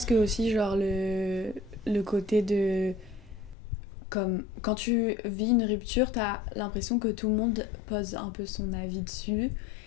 que aussi, genre, le côté de... Comme, quand tu vis une rupture, t'as l'impression que tout le monde pose un peu son avis dessus.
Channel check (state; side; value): drops out; right; at 3.6 s